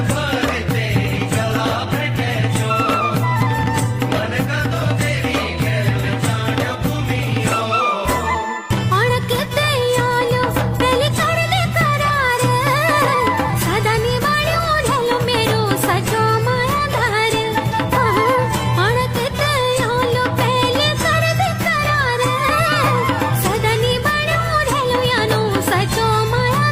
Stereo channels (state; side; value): identical; both; correlation 1.00